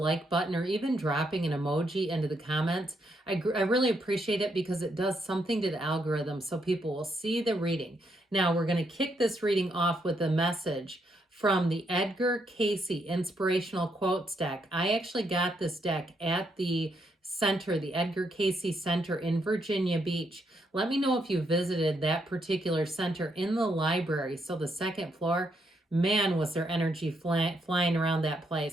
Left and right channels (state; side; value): normal; both; correlation 0.77